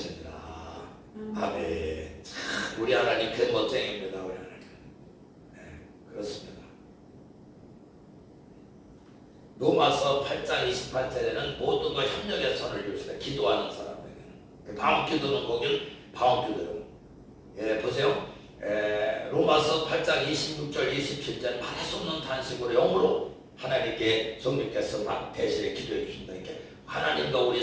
아멘. 참 우리 하나님 그 멋쟁입니다. 우리 하나님. 네, 그렇습니다. 로마서 8장 28절에는 모든 걸 협력의 선을 주시다. 기도하는 사람에게는. 방언기도는 거기는 방언기도예요. 예, 보세요. 로마서 8장 26절 27절 말할 수 없는 탄식으로 영으로 하나님께 성령께서 막 대신에 기도해 주신다. 이렇게 하나님과 우리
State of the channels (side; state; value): both; identical; correlation 1.00